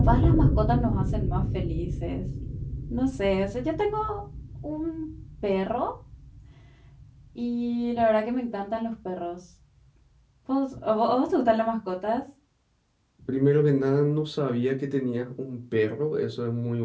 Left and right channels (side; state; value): both; identical; correlation 1.00